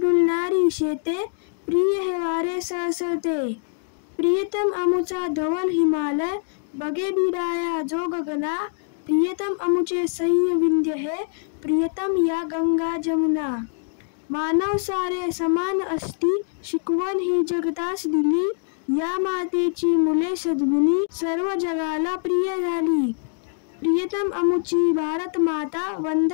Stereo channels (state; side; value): silent; right; digital silence